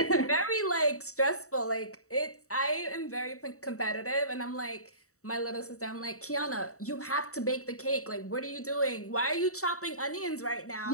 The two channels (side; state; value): right; late; 0.65 ms